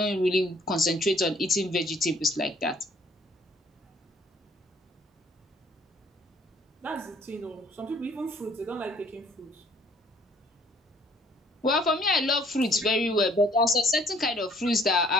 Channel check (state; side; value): normal; both; correlation 0.60